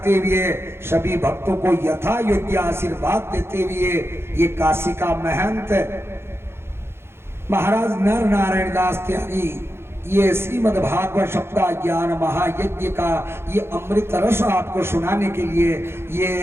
हुए, सभी भक्तों को यथा योग्य आशीर्वाद देते हुए, ये काशी का महंत महाराज नर नारायण दास त्यागी ये श्रीमद् भागवत सप्ताह ज्ञान महायज्ञ का ये अमृत रस आपको सुनाने के लिए ये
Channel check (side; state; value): left; late; 0.12 ms